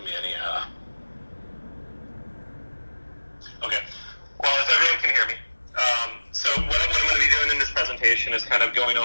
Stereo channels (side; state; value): both; inverted; correlation -1.00